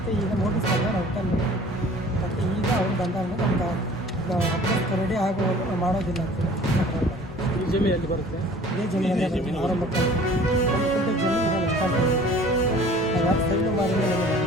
ಈಗ ನೋಟಿಸ್ ಬಂದಾಗ ನಾವು ರಿಟರ್ನ್ ಮತ್ತು ಈಗ ಅವ್ರು ಬಂದಾಗ ನಮ್ಗೆ ಅಪ್ಡೇಟ್ ರೆಡಿ ಆಗುವಾಗ ನಾವು ಮಾಡೋದಿಲ್ಲ ಅಂತೇಳಿ. ಈ ಜಮೀನಲ್ಲಿ ಬರುತ್ತೆ, ಇದೇ ಜಮೀನಲ್ಲಿ ಆರಂಭಕ್ಕೆ ಒಂದು ಕುಂಟೆ ಜಮೀನು ಎಷ್ಟು ಅಂತ ನಾವು ಯಾರು ಸೈನು ಮಾಡಿದ್ರೆ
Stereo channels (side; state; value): both; normal; correlation 0.48